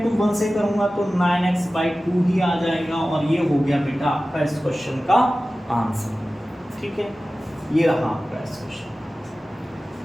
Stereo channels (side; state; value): both; normal; correlation 0.96